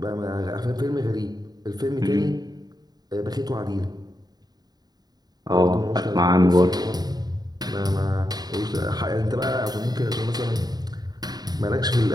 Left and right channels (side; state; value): left; late; 0.19 ms